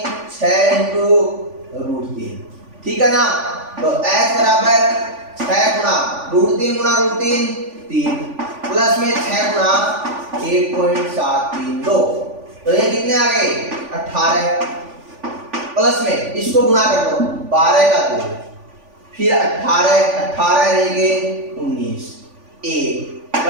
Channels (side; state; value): left; late; 3.5 ms